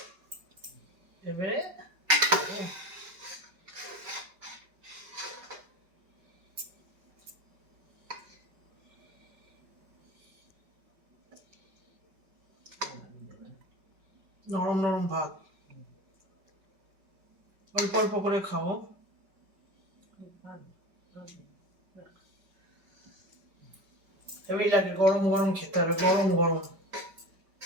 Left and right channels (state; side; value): late; left; 5.2 ms